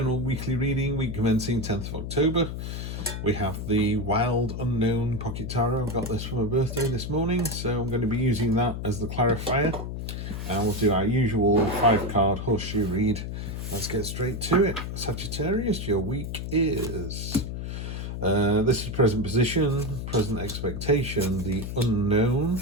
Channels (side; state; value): left; noise; hum, 5 dB below the sound